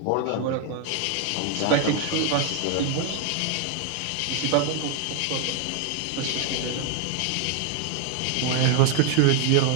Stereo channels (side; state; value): both; different; correlation 0.00